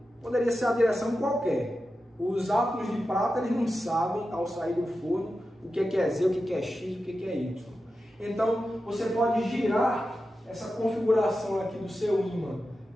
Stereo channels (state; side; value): normal; both; correlation 0.91